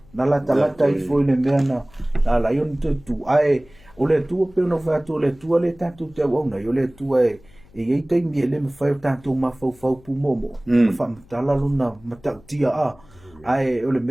la tangata I foi le mena la yon tu ai o le tu pe no va tu le tu le tanto te ona yo le tu e ei te mi le me fai tanto ma fau pu momo fa tala luna mata tia ai o le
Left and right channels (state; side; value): noise; left; hum, 26 dB below the sound